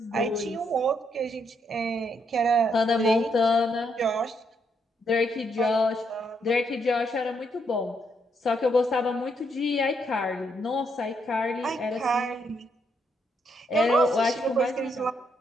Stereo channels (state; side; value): normal; both; correlation 0.76